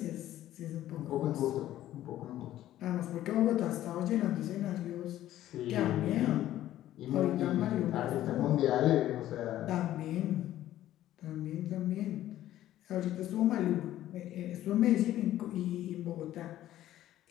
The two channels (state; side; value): quieter; right; 13.4 dB